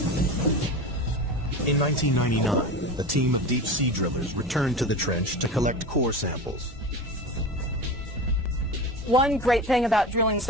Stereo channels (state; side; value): normal; both; correlation 0.29